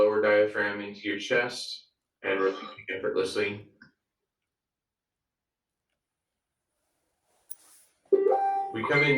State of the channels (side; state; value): both; identical; correlation 1.00